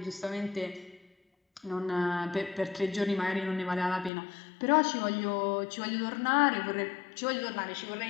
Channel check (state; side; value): drops out; right; at 4.1 s